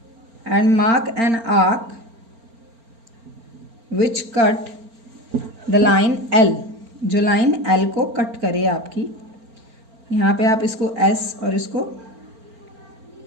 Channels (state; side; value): late; left; 4.4 ms